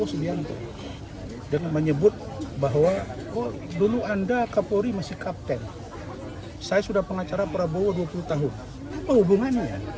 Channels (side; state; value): both; identical; correlation 1.00